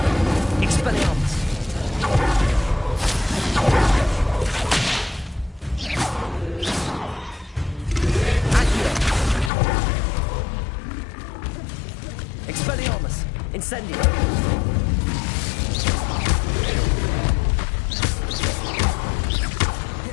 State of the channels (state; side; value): drops out; right; at 9.5 s